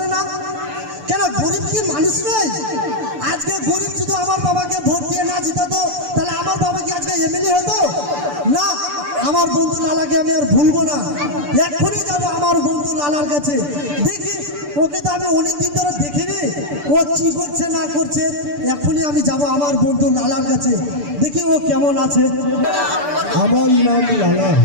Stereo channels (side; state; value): left; late; 6.8 ms